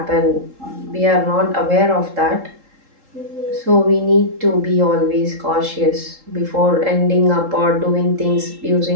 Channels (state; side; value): late; left; 3.7 ms